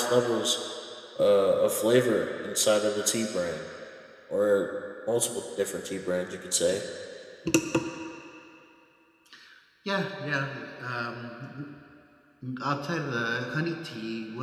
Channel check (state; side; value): identical; both; correlation 1.00